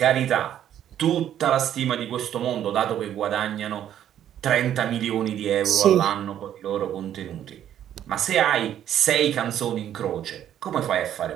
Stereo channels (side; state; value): left; quieter; 10.7 dB